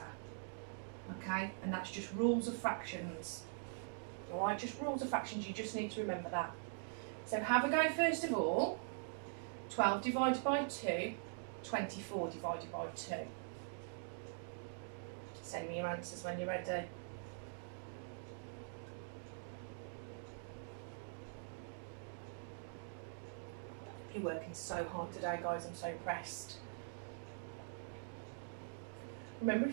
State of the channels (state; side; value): silent; left; digital silence